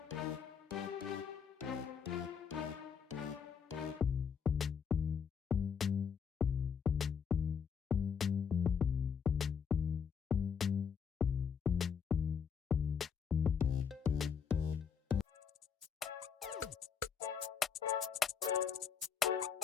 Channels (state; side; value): quieter; right; 6.9 dB